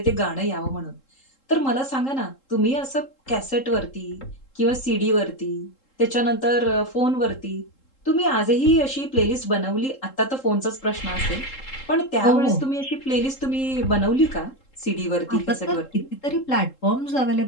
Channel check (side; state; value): right; late; 3.7 ms